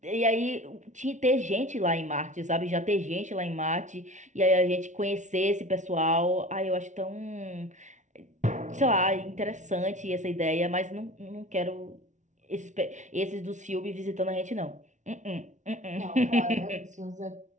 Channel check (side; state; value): left; late; 0.36 ms